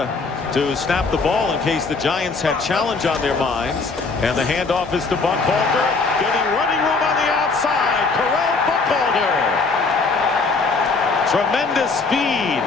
to snap the ball in case the Giants had challenge on their minds. And the handoff is to Buckhalter, getting running room on the outside. Correll Buckhalter. Tremendous speed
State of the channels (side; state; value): right; quieter; 4.2 dB